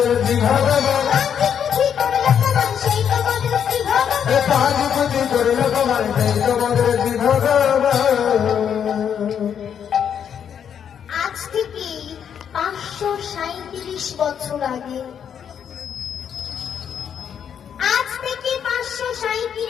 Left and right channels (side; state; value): right; quieter; 8.3 dB